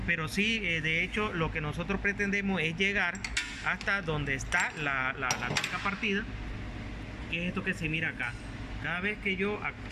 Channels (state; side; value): identical; both; correlation 1.00